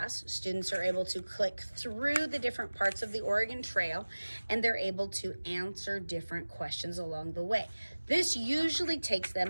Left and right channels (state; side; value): inverted; both; correlation -1.00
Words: Students are able to click through the different parts of the Oregon Trail, and they're able to answer different questions along the way. This usually takes